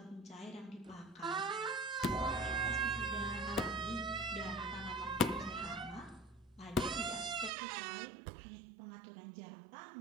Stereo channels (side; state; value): left; drops out; at 7.5 s